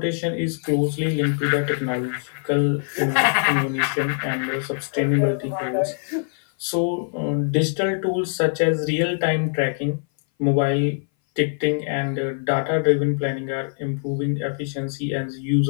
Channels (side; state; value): right; silent; 59 dB below the other